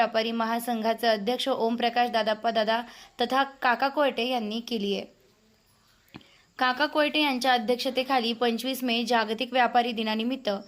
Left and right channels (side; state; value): both; identical; correlation 1.00